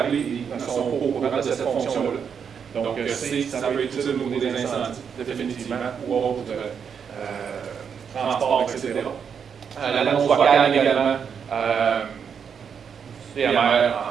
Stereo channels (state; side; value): quieter; left; 7.0 dB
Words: et ne sont pas au courant de cette fonction-là. Donc, ça peut être utile au niveau des incendies, définitivement, ou autres transports, etc. L'annonce vocale également, DMR